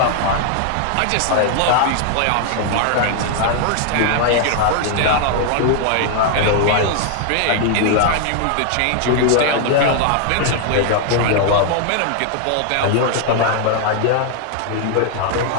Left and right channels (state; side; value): different; both; correlation 0.00